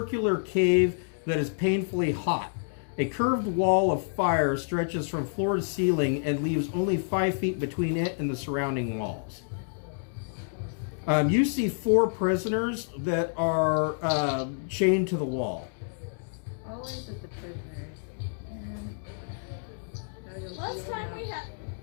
cave that is painfully hot. A curved wall of fire stretches from floor to ceiling and leaves only 5 feet between it and the surrounding walls. You see 4 prisoners that are chained to the wall. Always with the prisoners. Last time we had.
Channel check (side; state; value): right; silent; digital silence